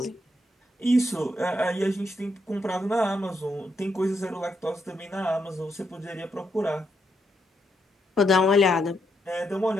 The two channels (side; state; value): both; normal; correlation 0.79